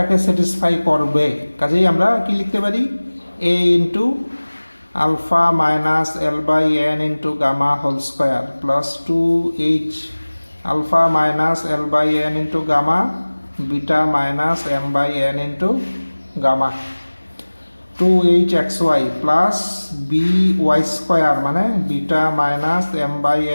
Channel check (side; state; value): both; inverted; correlation -1.00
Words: স্যাটিসফাই করবে, কাজেই আমরা কি লিখতে পারি, a into alpha minus l by n into gamma whole square plus 2h alpha minus l by n into gamma beta minus m by n into gamma 2h x y plus b y square মানে beta minus m by